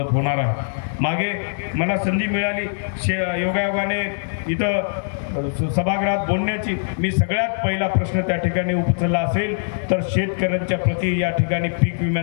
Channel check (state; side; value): silent; right; digital silence